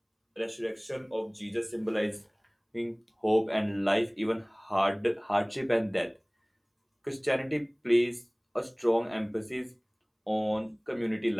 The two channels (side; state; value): both; identical; correlation 1.00